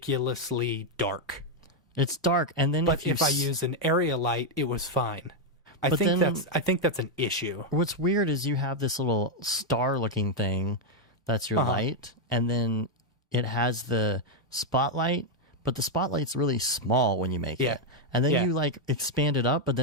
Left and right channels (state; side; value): normal; both; correlation 0.00